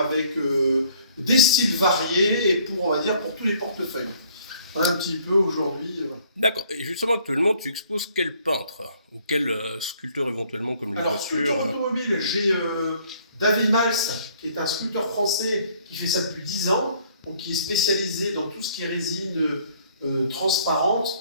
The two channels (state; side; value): inverted; both; correlation -0.60